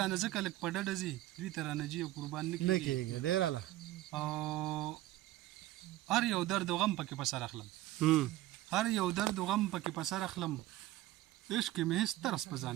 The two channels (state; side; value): quieter; left; 16.1 dB